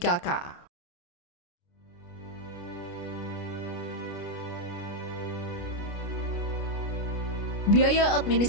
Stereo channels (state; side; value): late; right; 29 ms